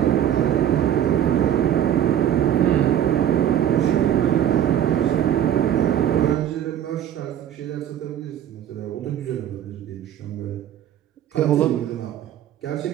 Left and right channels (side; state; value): left; quieter; 10.6 dB